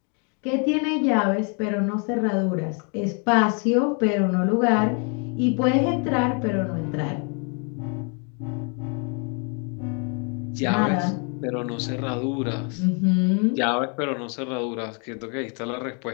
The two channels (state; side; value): quieter; right; 37.4 dB